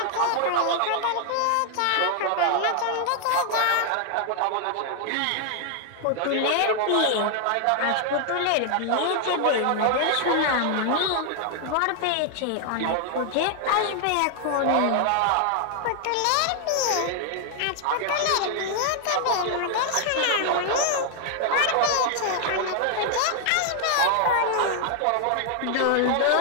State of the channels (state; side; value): different; both; correlation 0.00